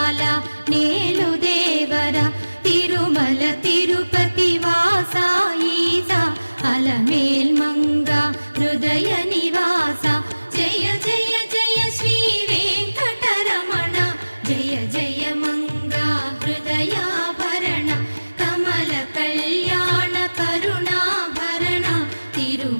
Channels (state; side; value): inverted; both; correlation -1.00